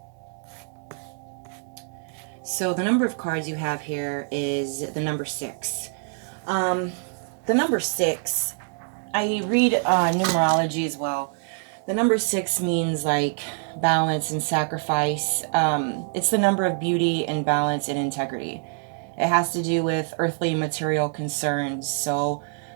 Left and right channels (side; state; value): left; silent; 57 dB below the other